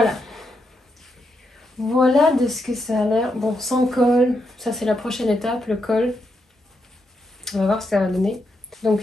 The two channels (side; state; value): both; normal; correlation 0.82